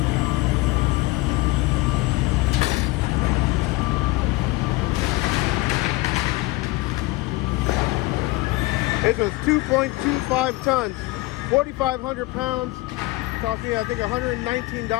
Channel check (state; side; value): quieter; right; 20.7 dB